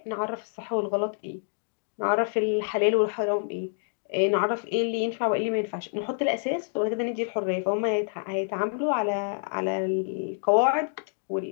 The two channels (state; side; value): silent; right; digital silence